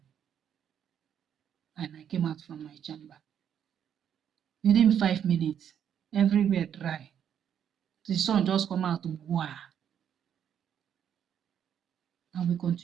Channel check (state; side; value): quieter; left; 9.0 dB